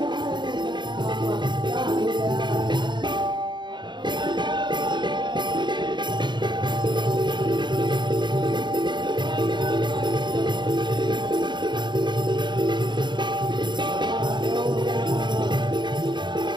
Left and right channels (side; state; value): left; late; 0.22 ms